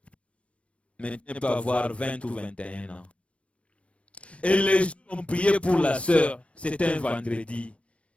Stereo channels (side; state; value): right; late; 0.061 ms